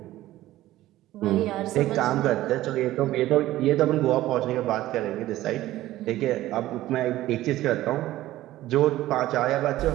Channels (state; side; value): quieter; left; 15.3 dB